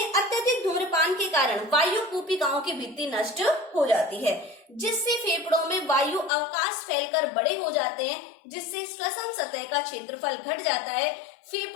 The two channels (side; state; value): right; drops out; at 6.3 s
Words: अत्यधिक धूम्रपान के कारण वायु कूपिकाओं की भित्ति नष्ट हो जाती है, जिससे फेफड़ों में वायु अवकाश फैलकर बड़े हो जाते हैं, जिससे श्वसन सतह का क्षेत्रफल घट जाता है,